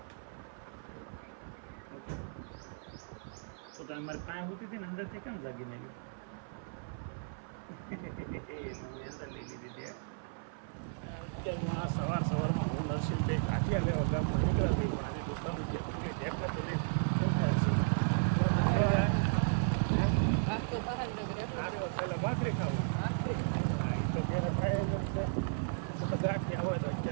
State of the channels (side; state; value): left; silent; 54 dB below the other